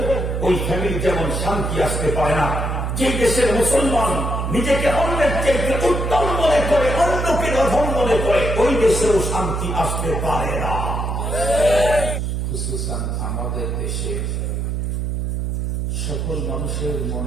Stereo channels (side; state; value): right; noise; hum, 1 dB below the sound